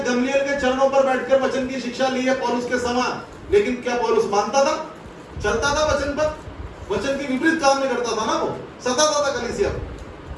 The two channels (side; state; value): both; identical; correlation 1.00